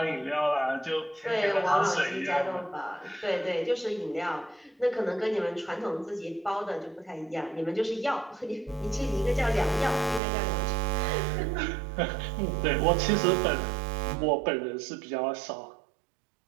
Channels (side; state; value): left; drops out; at 10.2 s